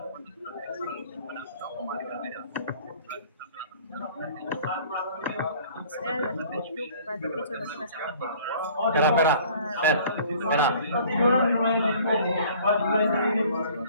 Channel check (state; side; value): inverted; both; correlation -0.51